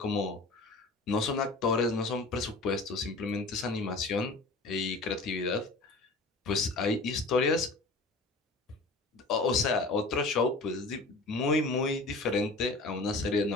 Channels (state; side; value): quieter; right; 3.2 dB